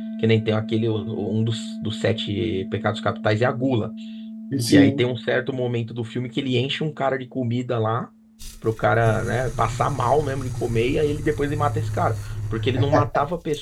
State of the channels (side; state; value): both; identical; correlation 1.00